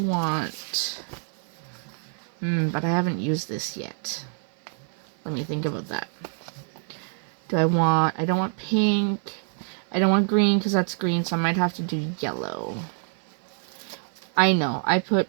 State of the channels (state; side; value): silent; left; 55 dB below the other